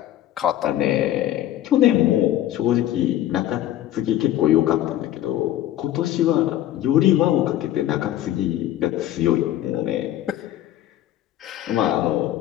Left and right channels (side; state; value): right; quieter; 13.0 dB